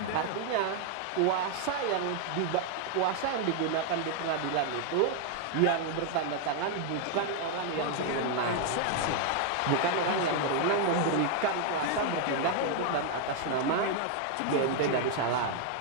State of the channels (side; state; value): both; different; correlation 0.00